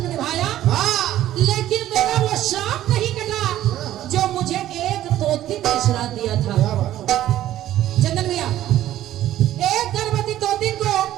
निभाया, लेकिन मेरा वो श्राप नहीं कटा जो मुझे एक तोती ने श्राप दिया था। चंदन भैया, एक गर्भवती तोती को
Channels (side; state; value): left; quieter; 13.1 dB